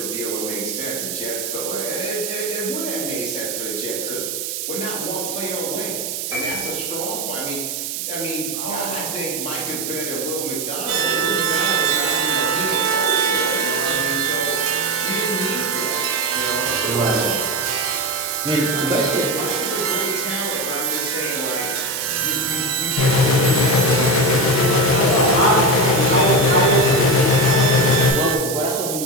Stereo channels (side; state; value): right; noise; hiss, 4 dB below the sound